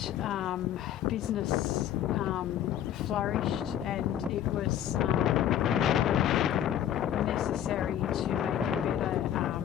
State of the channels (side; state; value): right; quieter; 10.7 dB